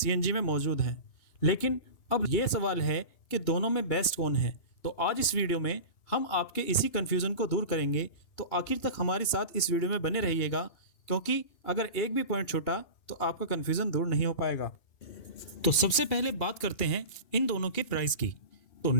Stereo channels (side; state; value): right; late; 2.8 ms